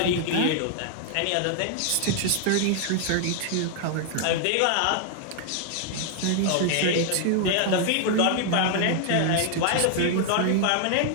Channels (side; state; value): both; different; correlation 0.00